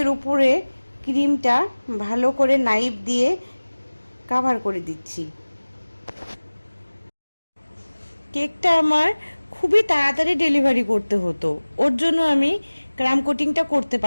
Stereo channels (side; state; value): both; inverted; correlation -1.00